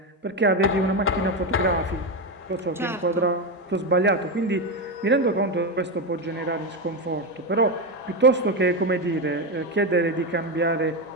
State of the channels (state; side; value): normal; both; correlation 0.12